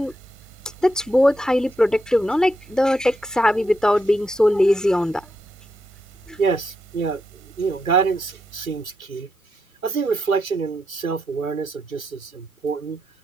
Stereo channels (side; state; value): both; normal; correlation 0.83